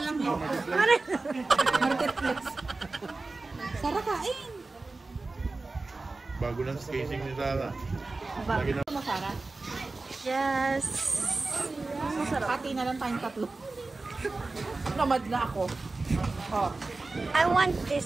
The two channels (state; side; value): quieter; left; 3.5 dB